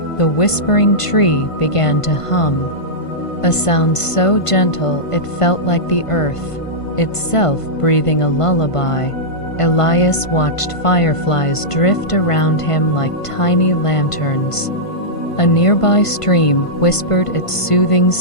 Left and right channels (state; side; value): late; right; 1.5 ms